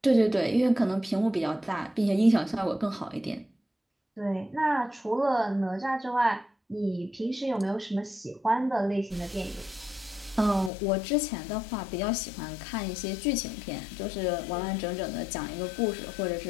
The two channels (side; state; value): right; drops out; at 10.7 s